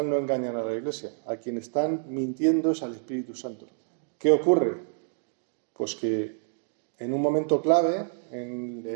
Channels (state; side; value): silent; left; digital silence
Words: no engañan a la Iglesia. A quien están mintiendo es al Espíritu Santo. ¿Qué ocurre? Pues que en un momento clave, en